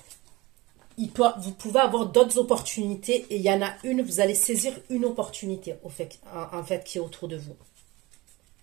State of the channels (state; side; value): quieter; left; 20.5 dB